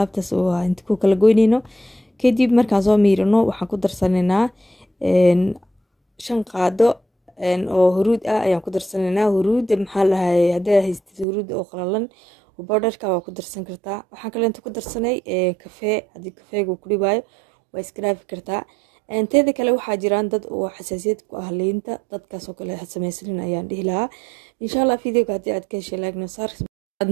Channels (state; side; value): drops out; left; at 11.2 s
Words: oo inta ku kala goyneyno kadib markaan soo miirino waxaan ku darsaneynaa 5 qaado oo huruud ah ayaan ku darsaneynaa huruud maxaa lahay haddii haystid huruud oo qalalan بودرka waa ku darsan kartaa waxaan kale inta ku darsanay kafee hadii kafeegu ku dhibaayo waa iskraafi kartaa inteeda kale waxaa jiraan dad oo xasaasiyad ku ah liinta dadkaas oo kale sameeysan ayaan dhihi lahaa insha Allah videoga hadii aad ka heshay like noo saar aad